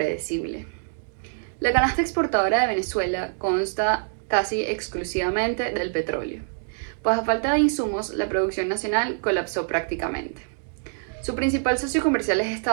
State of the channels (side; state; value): left; silent; 62 dB below the other